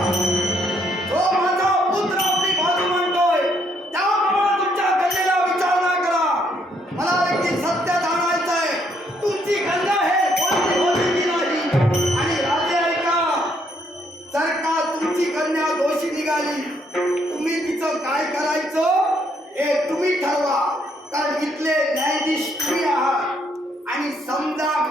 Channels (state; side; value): normal; both; correlation 0.71